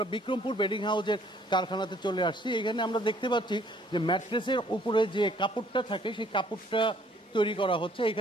বিক্রমপুর বেডিং হাউসের কারখানাতে চলে আসছি। এখানে আমরা দেখতে পাচ্ছি যে ম্যাট্রেসের উপরে যে কাপড়টা থাকে সেই কাপড়টা তৈরি করা হচ্ছে।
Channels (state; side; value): normal; both; correlation 0.61